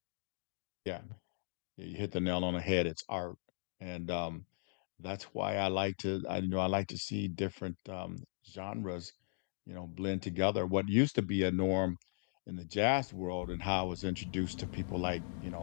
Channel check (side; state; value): right; silent; digital silence